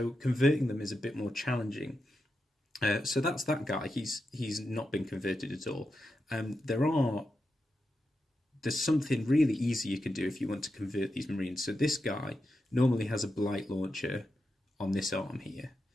converting them is a bit more challenging. So that's that guy. He's not been converted at all. There's something really easy you can do if you want to convert these Marines. So this guy normally has a blight launcher on this arm here.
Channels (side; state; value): both; normal; correlation 0.88